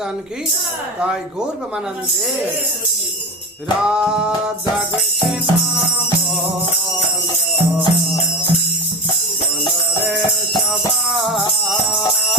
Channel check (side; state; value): both; normal; correlation 0.24